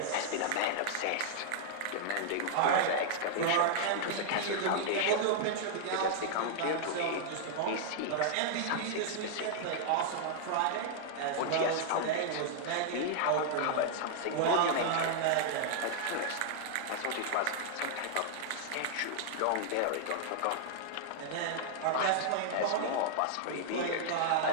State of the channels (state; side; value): different; both; correlation -0.01